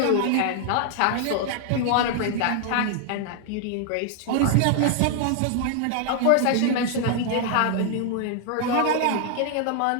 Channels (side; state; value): both; different; correlation 0.00